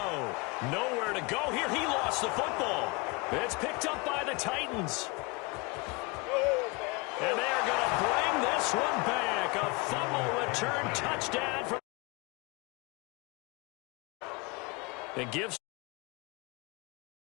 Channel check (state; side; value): quieter; right; 26.3 dB